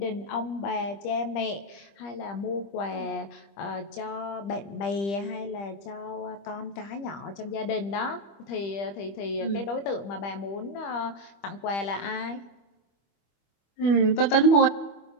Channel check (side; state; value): right; late; 25 ms